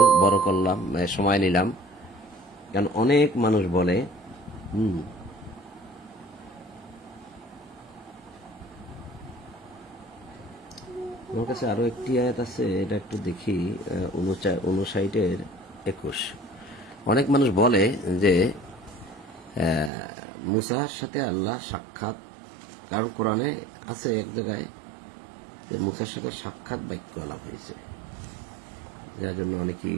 বড় করলাম, সময় নিলাম, কারণ অনেক মানুষ বলে আমার কাছে আরো একটি আয়াত আছে, এটা একটু দেখি, 59-21। অনেক মানুষ বলে যে মুসার সাথে আল্লাহ সাক্ষাৎ, কারণ কোরআনে আছে এক জায়গায় যে মুসার সাথে সাক্ষাৎ বাক্য আলাপ হয়েছে, যার জন্য অনেকেই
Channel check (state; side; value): drops out; left; at 19.9 s